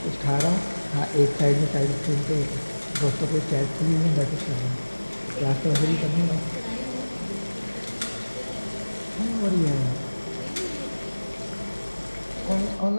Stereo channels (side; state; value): both; inverted; correlation -1.00